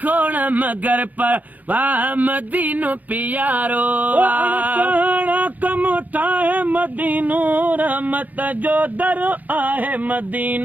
खोण मगर पर वाह मदीनो प्यारो कम ठाहे मदीनो रहमत जो दर आहे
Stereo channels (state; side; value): late; left; 0.081 ms